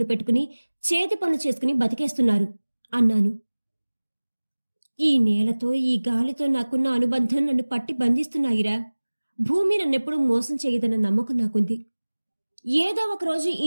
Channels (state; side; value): inverted; both; correlation -1.00